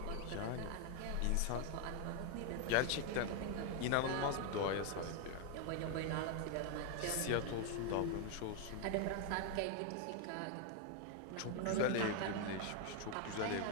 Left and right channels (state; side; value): different; both; correlation 0.01